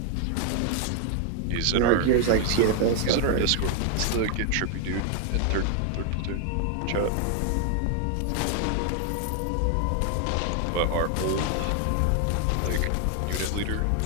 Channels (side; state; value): both; different; correlation 0.00